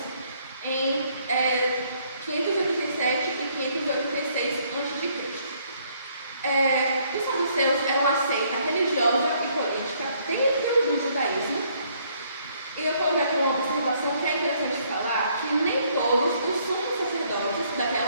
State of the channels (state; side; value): inverted; both; correlation -0.66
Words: em 587 e 586 a.C. Os saduceus eram uma seita religiosa e política dentro do judaísmo. E eu coloquei aqui uma observação que é interessante falar, que nem todos os sumos sacerdotes